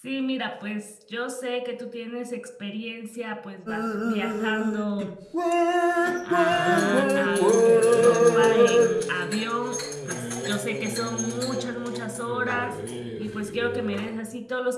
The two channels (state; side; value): identical; both; correlation 1.00